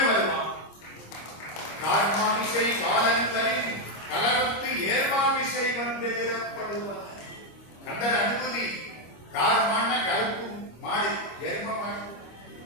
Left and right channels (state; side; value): late; right; 25 ms